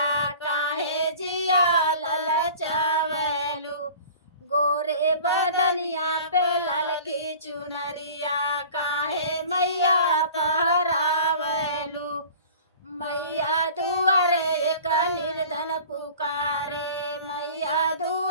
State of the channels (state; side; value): inverted; both; correlation -0.43